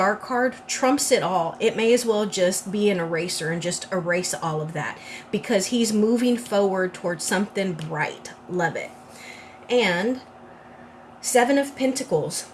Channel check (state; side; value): identical; both; correlation 1.00